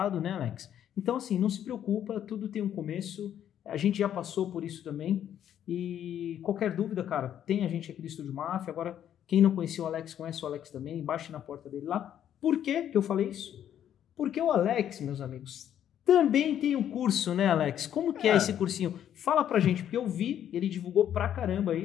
né, Alex? Então, assim, não se preocupa, tudo tem um começo, a gente já passou por isso também, e qualquer dúvida, cara, tem a gente aqui do Estúdio Máfia. Agora, quem não conhecia o Alex, conhece o Alex também, baixe na porta dele lá. Por que eu falei isso? Porque o Alex, meus amigos, também tem um curso, né, Alex? Como que é esse cursinho? Fala pra gente, porque eu vi, ele divulgou pra caramba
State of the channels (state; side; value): quieter; right; 10.2 dB